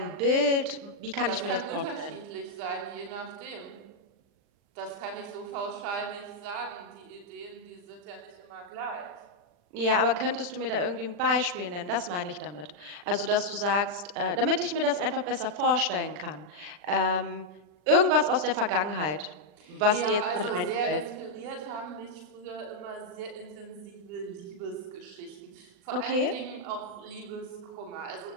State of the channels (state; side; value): late; left; 40 ms